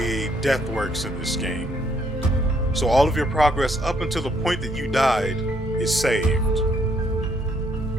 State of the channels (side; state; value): both; normal; correlation 0.69